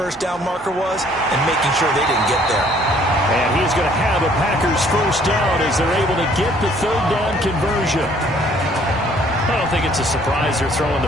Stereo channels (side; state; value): both; normal; correlation 0.60